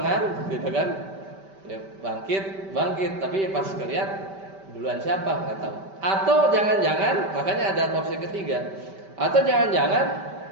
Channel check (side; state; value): left; late; 5.2 ms